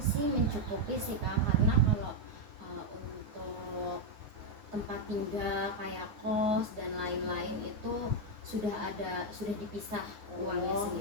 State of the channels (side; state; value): left; late; 9.7 ms